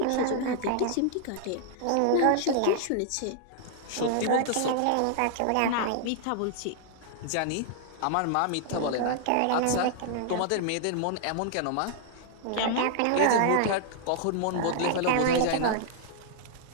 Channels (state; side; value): different; both; correlation -0.01